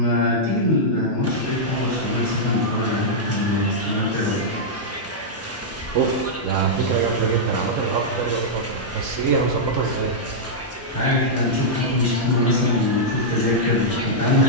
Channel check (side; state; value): both; normal; correlation -0.08